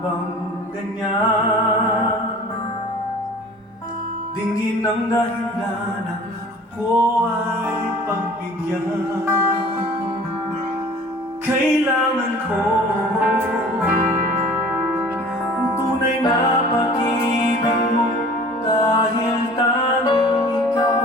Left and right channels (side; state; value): both; normal; correlation 0.46